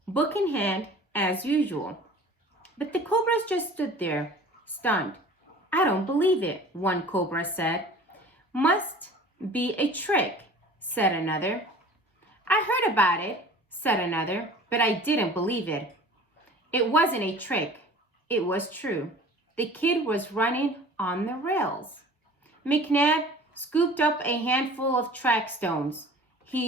book in hand as usual. But the Cobras just stood there, stunned. I don't believe it, one Cobra said. Must be a trick, said another. I heard about it, said another, but I didn't believe it. It wasn't a trick. It was true. The kid was running on the rails. McNab scooped up a handful of track stones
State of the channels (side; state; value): both; normal; correlation 0.44